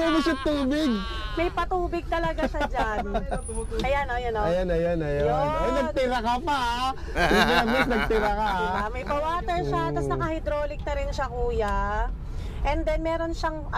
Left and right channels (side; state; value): both; identical; correlation 1.00